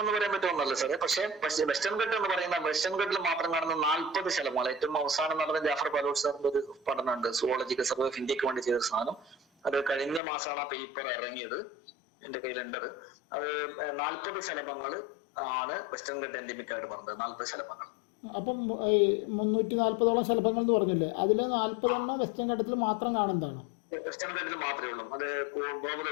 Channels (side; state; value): right; drops out; at 10.2 s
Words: എന്ന് പറയാൻ പറ്റുമെന്നല്ല സാറേ. പക്ഷേ വെസ്റ്റേൺ ഘട്ടം എന്ന് പറയുന്ന വെസ്റ്റേൺ ഘട്ടിൽ മാത്രം കാണുന്ന 40 ശലഭങ്ങൾ. ഏറ്റവും അവസാനം നടന്ന ജാഫർ ബാലൂർ സാറിന്റെ ഒരു പഠനമുണ്ട്, സുവോളജിക്കൽ സർവേ ഓഫ് ഇന്ത്യക്ക് വേണ്ടി ചെയ്ത സാധനം. അത് കഴിഞ്ഞ മാസമാണ് ആ പേപ്പർ ഇറങ്ങിയത്, എന്റെ കയ്യിലുണ്ടത്. അത് 40 ശലഭങ്ങൾ ആണ് വെസ്റ്റേൺ ഘട്ട എൻഡിമിക് ആയിട്ട് പറഞ്ഞത്. 40 ശലഭങ്ങൾ. അപ്പം ഈ 340ഓളം ശലഭങ്ങൾ എന്ന് പറഞ്ഞില്ലേ, അതിൽ 40 വെസ്റ്റേൺ ഘട്ടത്തിൽ മാത്രം കാണുന്നതാണ്? വെസ്റ്റേൺ ഘട്ടത്തിൽ മാത്രമേ ഉള്ളൂ. അത്